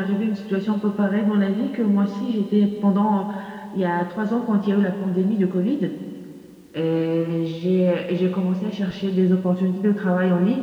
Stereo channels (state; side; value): identical; both; correlation 1.00